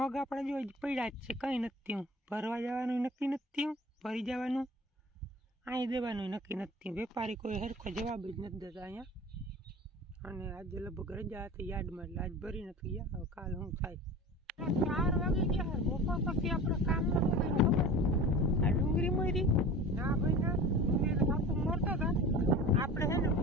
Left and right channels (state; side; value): normal; both; correlation 0.37